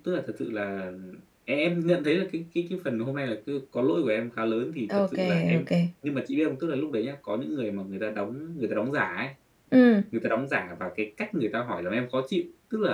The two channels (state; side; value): identical; both; correlation 1.00